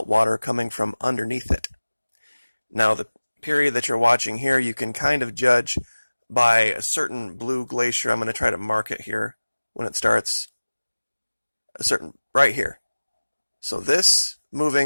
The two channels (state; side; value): inverted; both; correlation -1.00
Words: coming from underneath it. Now, the period that you're watching here, you can kind of judge by a certain blue glacier. I'm going to try to mark it here when it starts. Right here. So this